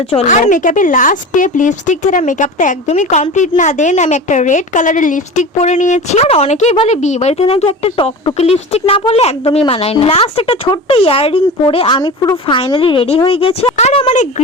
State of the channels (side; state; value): both; normal; correlation 0.32